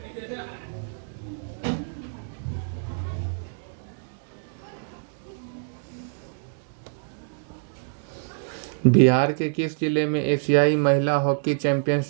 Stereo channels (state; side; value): silent; left; digital silence